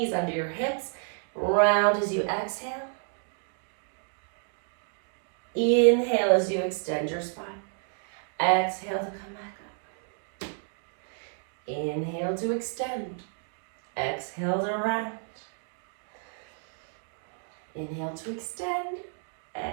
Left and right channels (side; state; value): left; silent; 58 dB below the other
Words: under your hips. Round as you exhale. Inhale as you extend your spine. Exhale to come back up. Inhale to extend. Exhale to round. Inhale to extend.